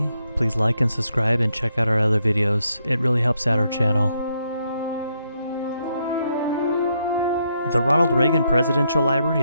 please like and subscribe and check out our other videos. It really helps out our channel. The Ronald Reagan Presidential Library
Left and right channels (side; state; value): both; inverted; correlation -0.77